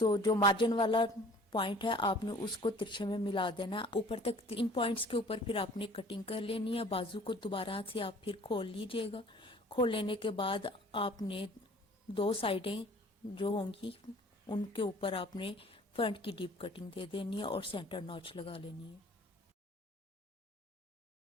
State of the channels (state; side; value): normal; both; correlation 0.50